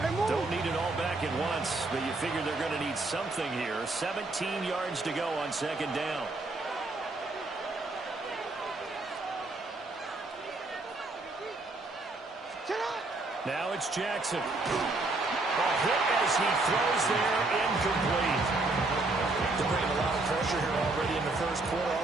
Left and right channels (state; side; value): quieter; left; 3.1 dB